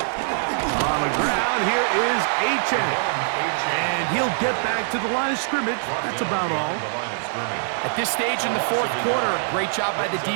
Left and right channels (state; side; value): silent; left; digital silence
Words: the ground, here is H.N. And he'll get back to the line of scrimmage. That's about all. At this stage in the fourth quarter, great job by the